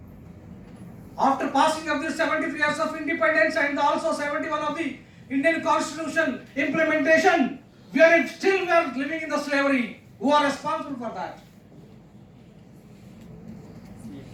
After passing of the 73 years of independence and also 71 of the Indian Constitution implementation, we are living in the slavery. Who are responsible for that?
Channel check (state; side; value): identical; both; correlation 1.00